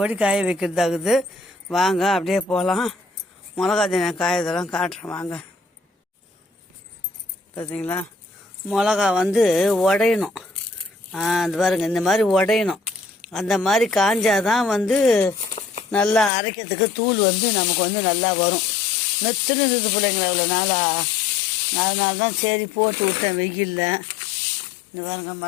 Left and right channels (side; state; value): right; drops out; at 16.3 s